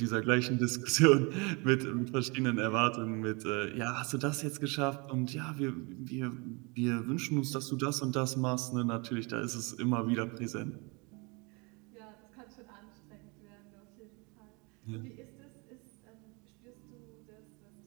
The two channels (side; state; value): left; quieter; 29.4 dB